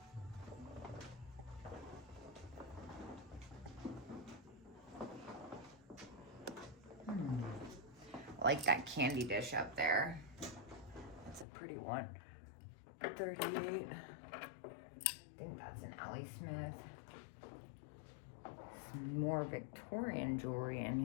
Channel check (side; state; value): right; drops out; at 11.5 s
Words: I like that candy dish up there. That's a pretty one. 38. I think that's an Ellie Smith. Some more Victorian jewelry in